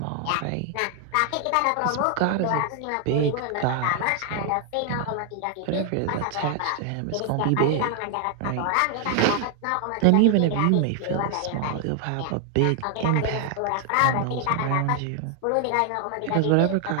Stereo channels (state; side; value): different; both; correlation 0.00